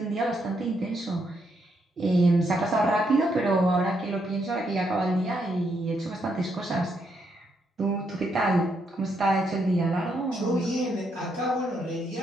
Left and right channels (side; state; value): both; normal; correlation 0.77